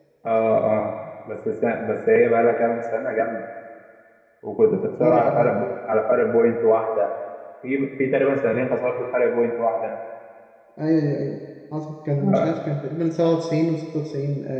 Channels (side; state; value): both; identical; correlation 1.00